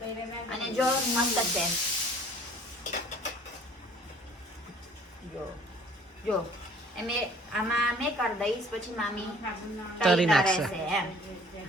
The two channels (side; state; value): both; normal; correlation 0.53